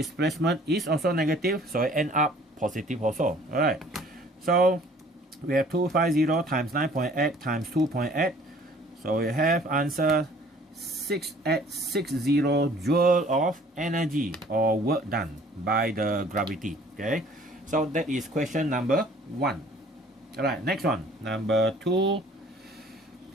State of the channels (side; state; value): both; normal; correlation 0.54